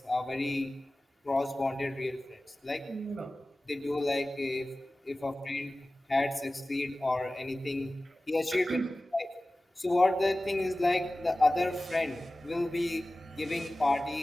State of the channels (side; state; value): both; normal; correlation 0.97